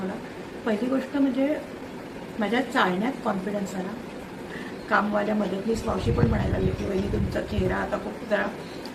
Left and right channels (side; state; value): both; identical; correlation 1.00